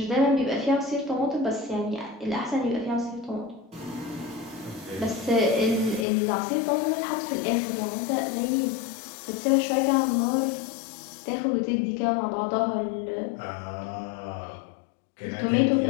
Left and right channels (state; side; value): drops out; right; at 6.1 s